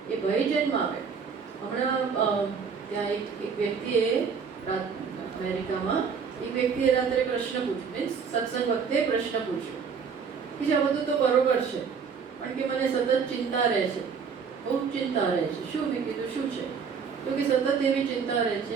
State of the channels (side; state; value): left; quieter; 6.1 dB